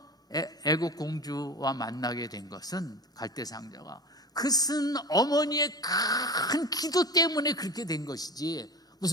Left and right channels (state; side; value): normal; both; correlation 0.32